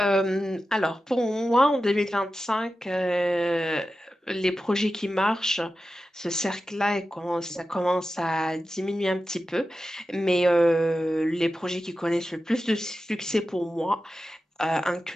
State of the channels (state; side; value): normal; both; correlation 0.92